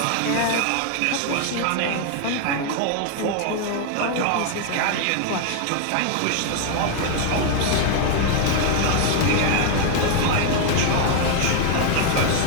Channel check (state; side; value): different; both; correlation 0.01